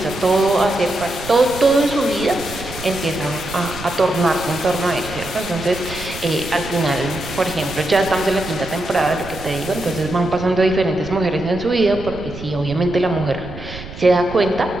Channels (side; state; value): right; noise; rumble, 13 dB below the sound